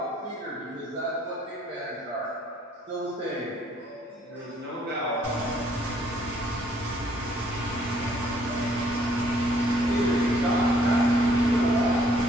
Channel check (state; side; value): normal; both; correlation 0.64